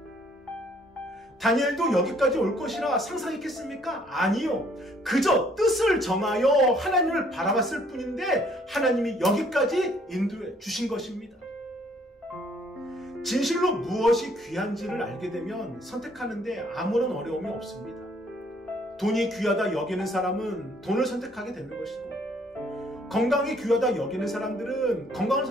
다니엘도 여기까지 올 것이라 상상했겠습니까? 아니요. 그저 뜻을 정하여 하나님을 바라봤을 뿐인데 하나님이 여기까지 인도해 주신 것입니다. 진실로 무엇이 귀한지를 알게 되면 선택하는데 아무런 어려움이 없습니다. 돈이 귀하다 여기는 사람은 돈을 선택하게 되는 것이고, 건강이 귀하다 여기는 사람들은 건강을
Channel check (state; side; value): normal; both; correlation 0.63